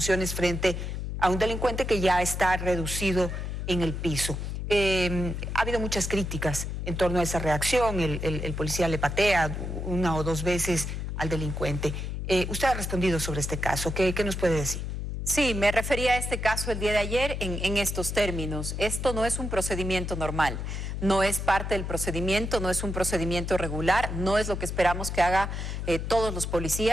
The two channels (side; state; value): left; noise; hum, 4 dB below the sound